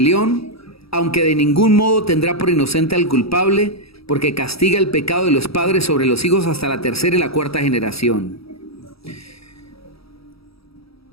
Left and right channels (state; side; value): late; right; 0.76 ms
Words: aunque de ningún modo tendrá por inocente al culpable, porque castiga el pecado de los padres sobre los hijos hasta la tercera y la cuarta generación.